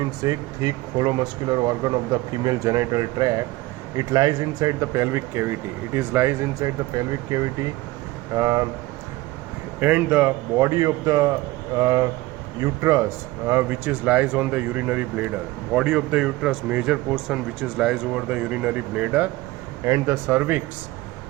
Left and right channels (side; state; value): left; quieter; 19.2 dB